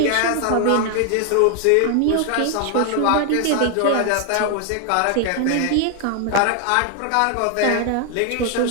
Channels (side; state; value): both; different; correlation 0.00